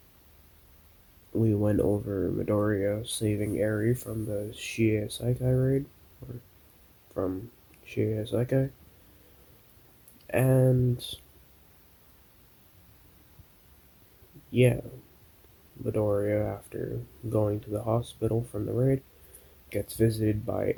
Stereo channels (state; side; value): identical; both; correlation 1.00